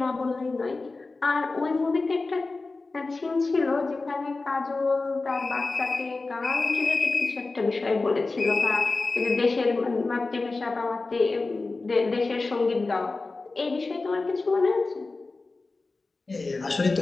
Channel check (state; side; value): quieter; right; 3.6 dB